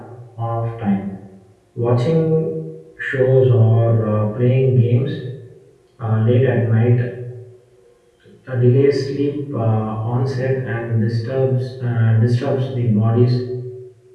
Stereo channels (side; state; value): both; identical; correlation 1.00